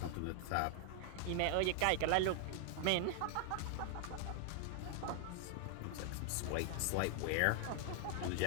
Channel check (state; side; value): different; both; correlation 0.00